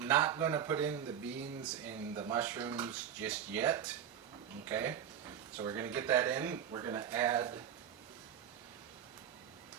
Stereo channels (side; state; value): left; quieter; 9.2 dB